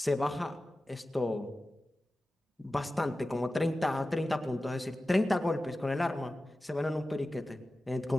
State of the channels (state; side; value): normal; both; correlation 0.95